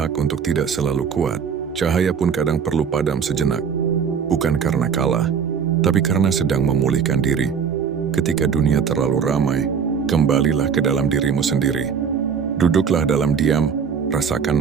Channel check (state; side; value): quieter; left; 6.8 dB